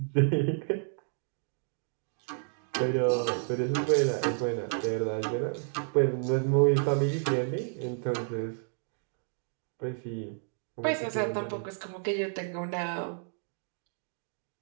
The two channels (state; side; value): silent; left; digital silence